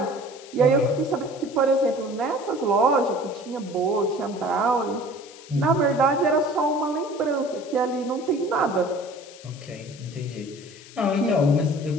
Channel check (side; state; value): left; noise; hiss, 20 dB below the sound